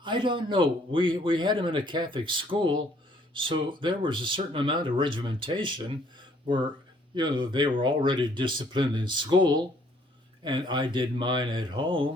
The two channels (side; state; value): both; normal; correlation 0.63